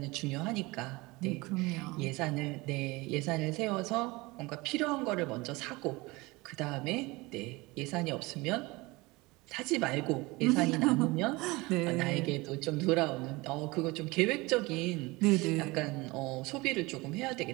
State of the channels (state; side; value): quieter; left; 22.9 dB